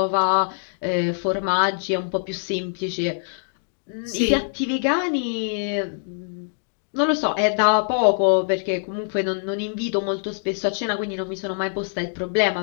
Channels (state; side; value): silent; right; digital silence